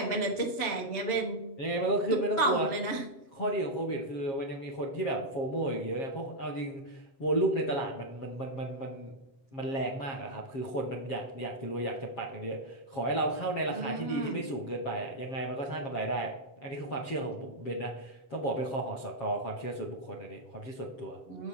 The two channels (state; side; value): late; right; 7.4 ms